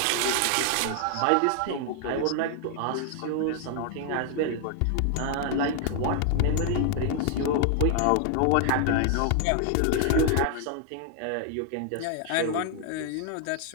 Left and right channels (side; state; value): both; different; correlation 0.00